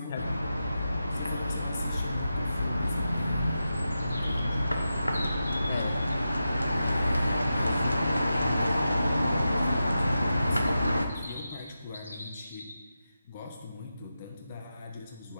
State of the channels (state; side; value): inverted; both; correlation -0.90